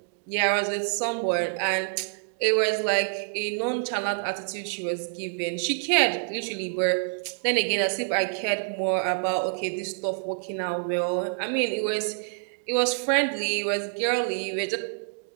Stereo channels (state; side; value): silent; left; digital silence